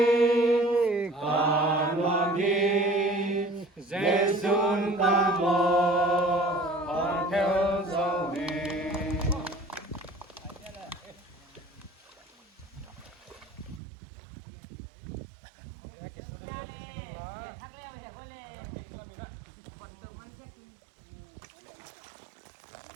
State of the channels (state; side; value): drops out; left; at 13.8 s